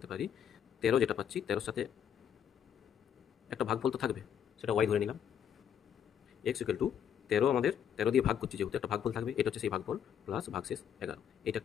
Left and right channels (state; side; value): quieter; right; 8.9 dB